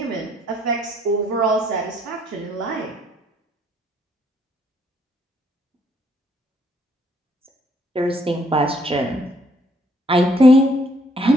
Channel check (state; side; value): normal; both; correlation 0.67